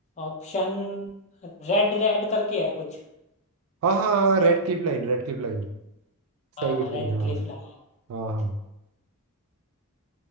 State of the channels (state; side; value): normal; both; correlation -0.11